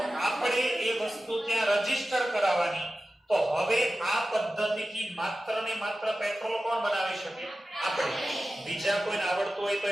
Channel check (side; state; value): both; normal; correlation 0.94